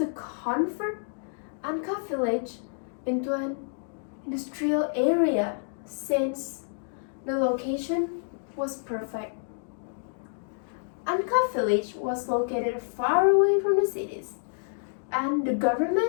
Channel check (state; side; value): silent; right; digital silence